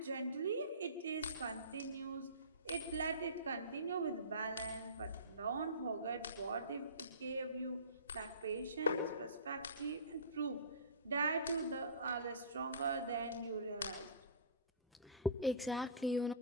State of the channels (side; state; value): both; inverted; correlation -0.34